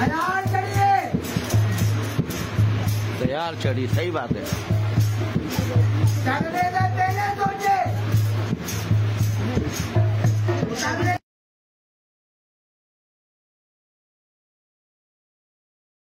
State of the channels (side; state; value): both; identical; correlation 1.00